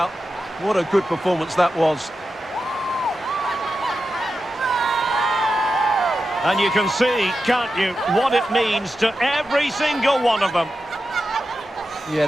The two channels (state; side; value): normal; both; correlation 0.90